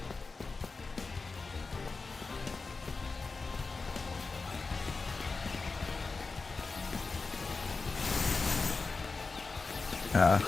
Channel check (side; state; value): right; quieter; 4.1 dB